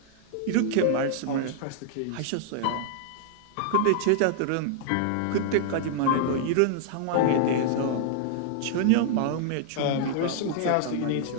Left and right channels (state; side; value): different; both; correlation -0.01